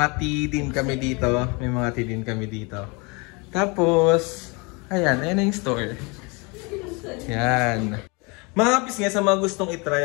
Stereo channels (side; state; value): right; quieter; 29.3 dB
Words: tea din kami dito. Tapos, ayan na yung store. Yan. Mga kapis nga sa mga gustong itry